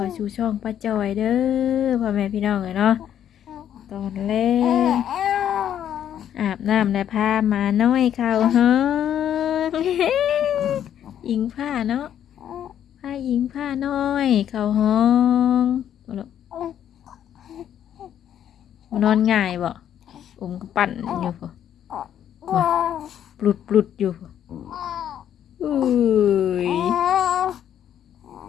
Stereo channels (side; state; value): right; quieter; 10.0 dB